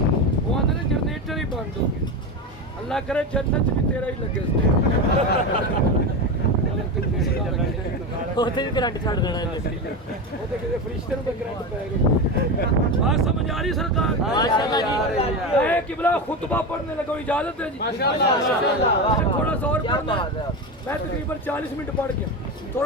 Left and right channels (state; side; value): normal; both; correlation 0.19